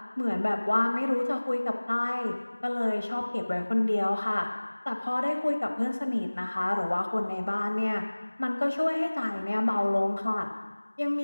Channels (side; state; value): both; inverted; correlation -1.00